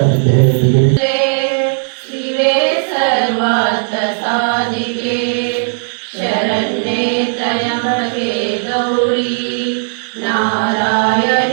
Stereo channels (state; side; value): silent; left; digital silence